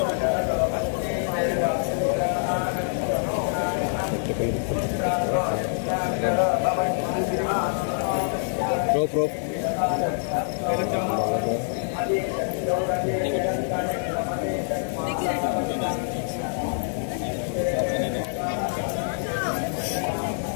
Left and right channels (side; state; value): right; silent; 58 dB below the other